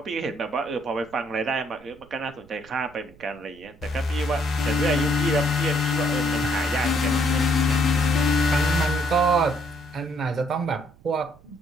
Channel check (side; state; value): right; noise; rumble, 26 dB below the sound